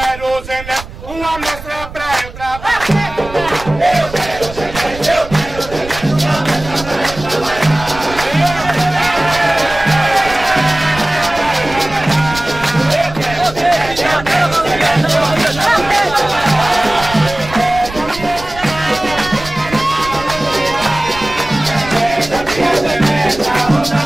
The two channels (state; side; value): noise; right; rumble, 14 dB below the sound